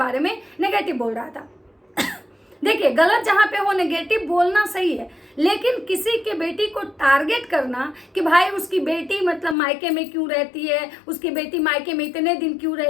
में नेगेटिव बोल रहा था। देखिए, गलत जहाँ पे हो नेगेटिव बोलना सही है, लेकिन किसी के बेटी को टारगेट करना कि भाई उसकी बेटी मतलब मायके में क्यों रहती है, उसकी बेटी मायके में इतने दिन क्यों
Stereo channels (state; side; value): drops out; right; at 9.6 s